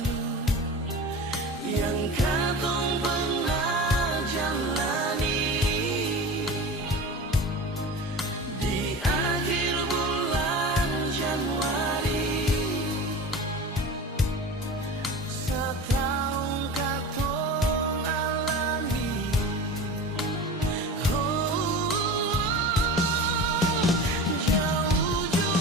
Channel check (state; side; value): normal; both; correlation 0.33